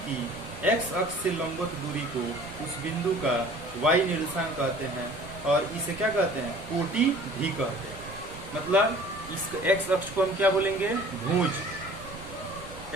की x अक्ष से लंबवत दूरी को उस बिंदु का y निर्देशांक कहते हैं, और इसे क्या कहते हैं, कोटि भी कहते हैं। मतलब इस x अक्ष को हम क्या बोलेंगे, भुज।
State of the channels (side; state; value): right; noise; rumble, 16 dB below the sound